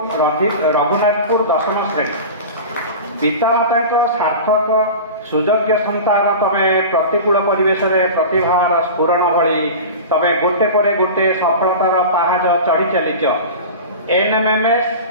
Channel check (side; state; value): both; inverted; correlation -0.31